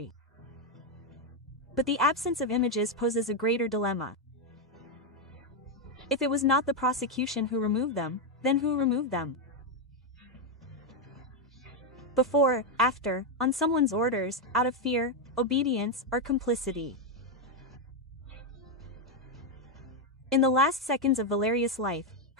But the absence of images poses a greater dilemma. If it was not the prosecution who removed them, then who removed them? Before, after, on someone's orders, out of fear, obedience, or complicity. In the last seconds of Valeria's life,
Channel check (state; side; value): normal; both; correlation 0.04